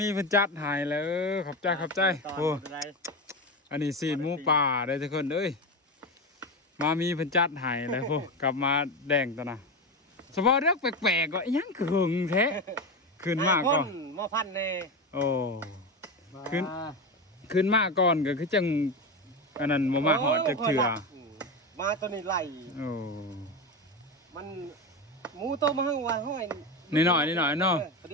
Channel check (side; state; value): both; normal; correlation 0.18